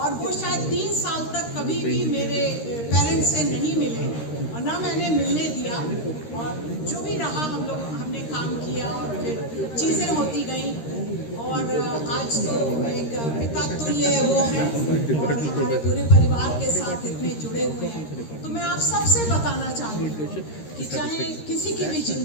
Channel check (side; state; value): right; late; 13 ms